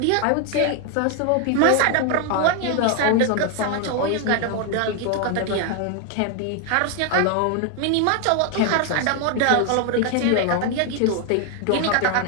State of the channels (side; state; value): both; different; correlation 0.01